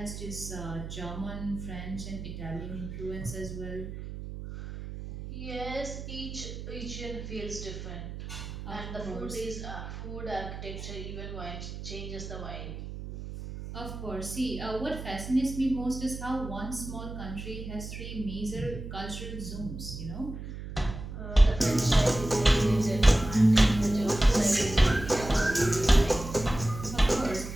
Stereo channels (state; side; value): noise; right; hum, 9 dB below the sound